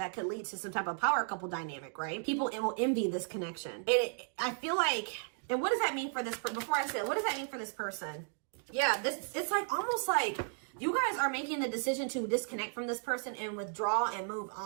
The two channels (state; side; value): silent; left; 55 dB below the other